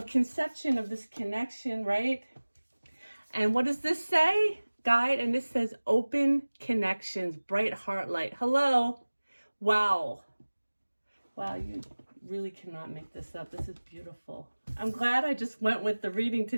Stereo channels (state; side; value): inverted; both; correlation -1.00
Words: conception of this connection, right? And what does this say? Guide, and this says open connections, bright heart light. Hello. Wow. Wow, you really cannot make this up. This is beautiful. I'm glad I just went with the reading